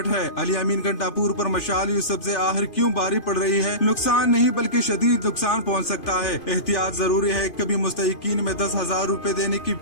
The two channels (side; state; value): right; late; 2.5 ms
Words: है। अली अमीन घंटापुर पर मशाल यूसुफजई आखिर क्यों बारी पड़ रही है? नुकसान नहीं बल्कि शदीद नुकसान पहुँच सकता है। एहतियात जरूरी है। कभी मुस्तहिकीन में 10,000 रूपए देने की